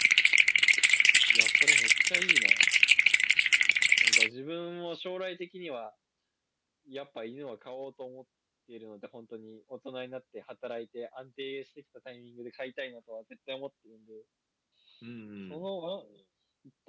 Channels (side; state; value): both; identical; correlation 1.00